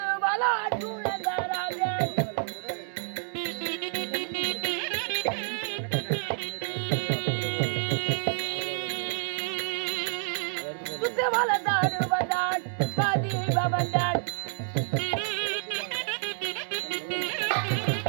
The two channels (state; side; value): silent; left; digital silence